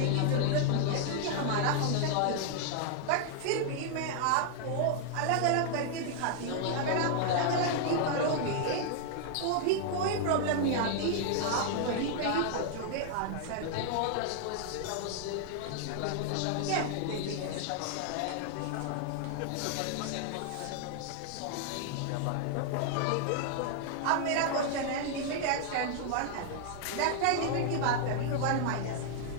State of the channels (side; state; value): both; different; correlation 0.00